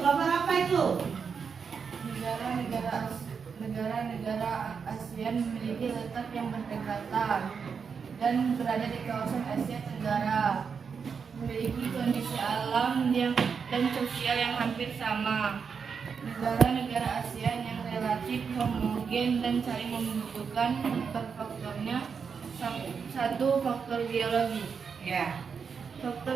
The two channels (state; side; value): quieter; left; 6.1 dB